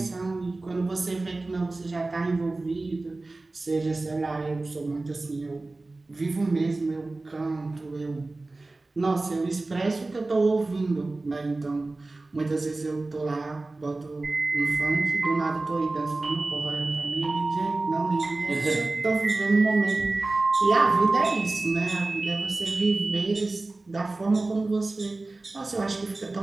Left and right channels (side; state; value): left; quieter; 3.2 dB